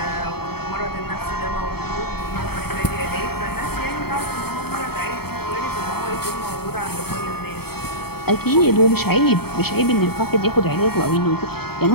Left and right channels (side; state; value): right; late; 0.96 ms